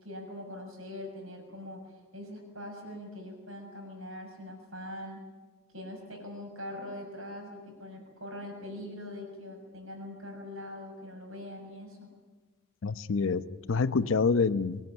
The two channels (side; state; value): right; quieter; 3.8 dB